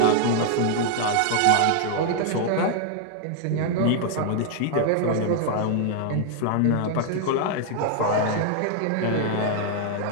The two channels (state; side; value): different; both; correlation -0.01